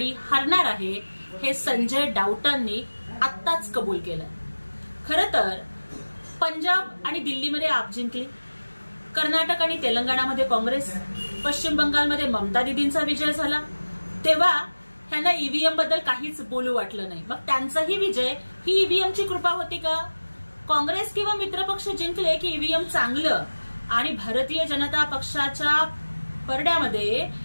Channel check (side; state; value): both; inverted; correlation -1.00